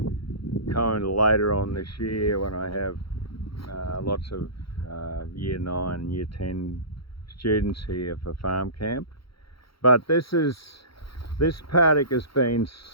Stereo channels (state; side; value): late; right; 0.75 ms